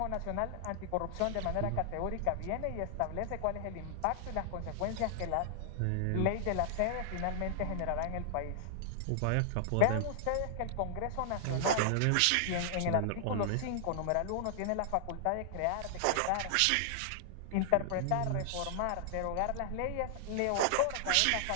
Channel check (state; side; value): different; both; correlation -0.01